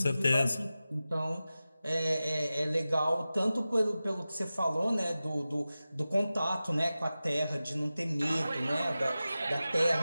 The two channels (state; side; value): inverted; both; correlation -0.95